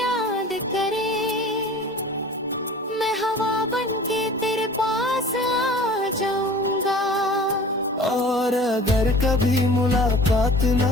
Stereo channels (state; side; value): normal; both; correlation 0.44